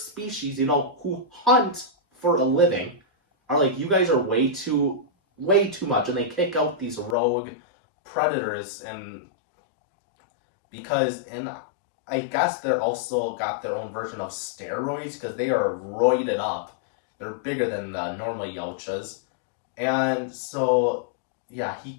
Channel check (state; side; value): drops out; right; at 7.2 s